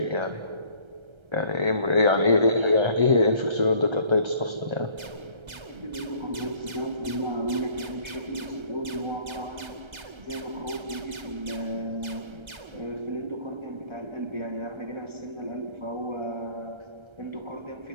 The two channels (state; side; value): late; left; 1.3 ms